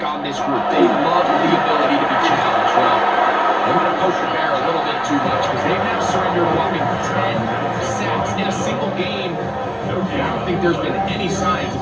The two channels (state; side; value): identical; both; correlation 1.00